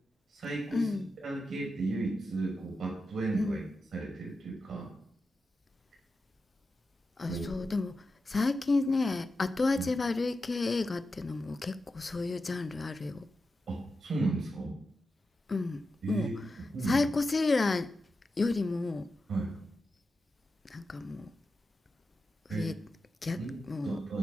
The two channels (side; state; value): both; normal; correlation 0.90